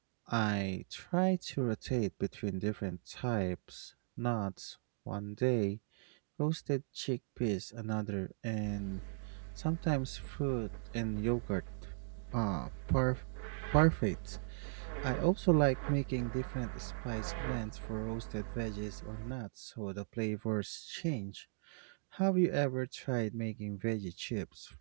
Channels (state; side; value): silent; left; digital silence